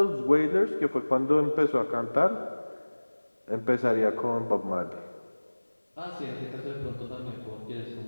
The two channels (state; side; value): inverted; both; correlation -1.00